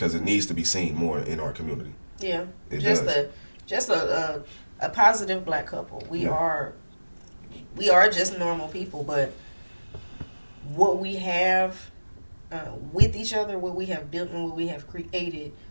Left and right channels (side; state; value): both; inverted; correlation -1.00